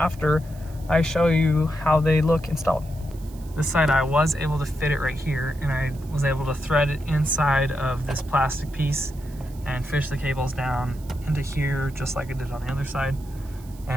I show you how they look installed. This side I was able to fit it right here, and I was able to thread it inside of this plastic piece and fish the cables down into here just like I did on the other side.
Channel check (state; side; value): noise; right; hiss, 24 dB below the sound